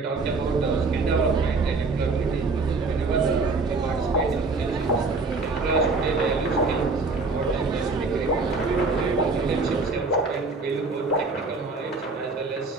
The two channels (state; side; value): quieter; left; 3.8 dB